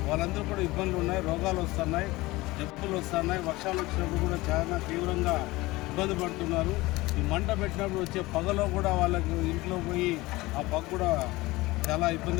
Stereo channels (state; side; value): quieter; right; 20.3 dB